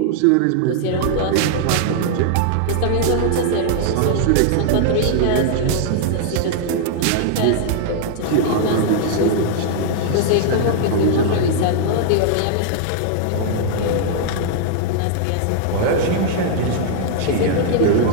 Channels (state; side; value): different; both; correlation -0.01